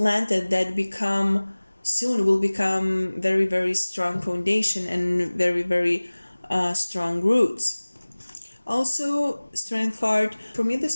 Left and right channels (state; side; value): inverted; both; correlation -1.00